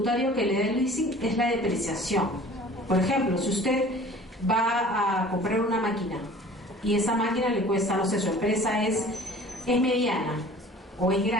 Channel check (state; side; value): normal; both; correlation 0.46